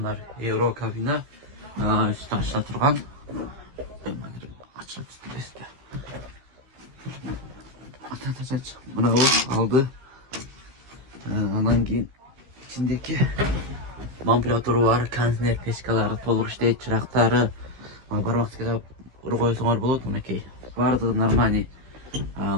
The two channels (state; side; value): late; left; 15 ms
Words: евро кабина үсті ашыла тұрған. Ашыла тұрған. Мынау алды. Анан кейін içindeki манипулятору бар, контейнер печкалары толық іштейді, чырақтары. Бар уақытқа ұры қойсаңар болады, мінекей. Бардығы нормальный.